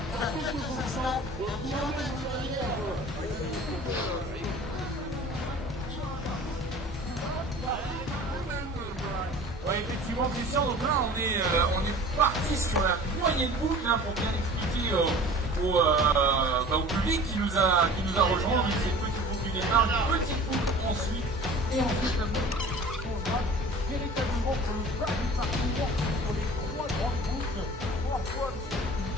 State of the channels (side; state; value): both; normal; correlation 0.43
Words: Ouais, effectivement, Christian, donc là on est parti sur la moyenne boucle hein, pour bien expliquer au public qui nous a rejoint. Donc c'est une petite boucle du départ, une petite boucle ensuite, et ensuite la boucle on va véritablement pour le bas du parcours sur les 3 grandes boucles, 3 fois le